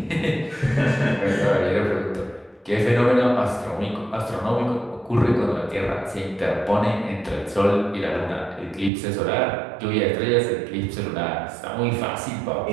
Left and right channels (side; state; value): left; drops out; at 8.9 s